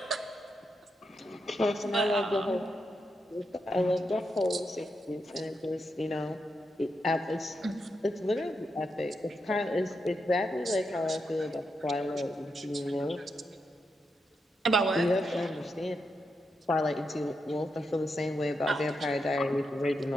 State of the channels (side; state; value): both; normal; correlation 0.84